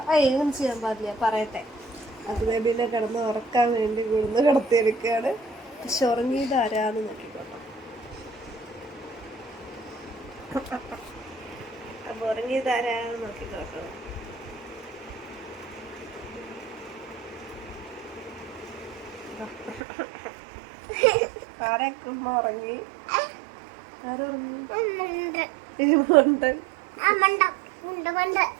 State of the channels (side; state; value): left; drops out; at 19.8 s